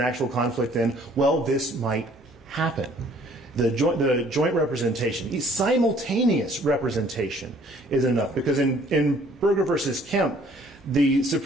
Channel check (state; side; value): normal; both; correlation 0.58